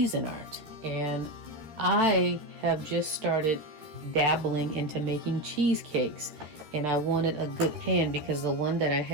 And I have just started dabbling into making cheesecakes, and I wanted a good pan because the one that I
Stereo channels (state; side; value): late; left; 13 ms